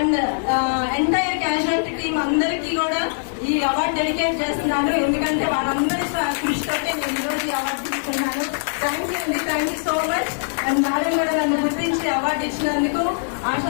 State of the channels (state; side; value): silent; right; digital silence